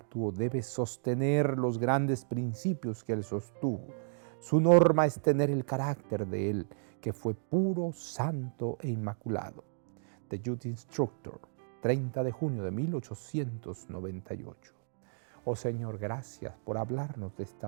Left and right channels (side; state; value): left; silent; digital silence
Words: Debe sostener los grandes principios que Él sostuvo. Su norma es tener el carácter de Él, que fue puro, santo e inmaculado. The Youth Instructor, 30 de junio de 1898. Oh Señor, gracias por hablarnos de